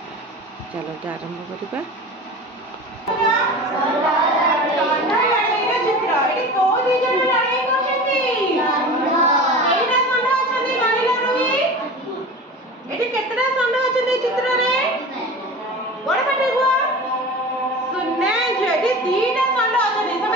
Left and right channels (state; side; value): normal; both; correlation 0.34